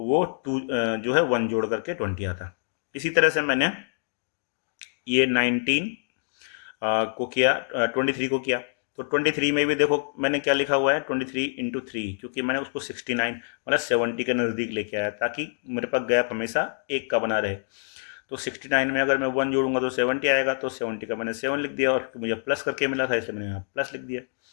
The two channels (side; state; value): right; silent; digital silence